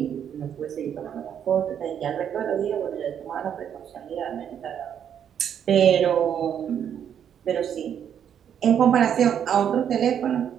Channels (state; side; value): quieter; left; 8.8 dB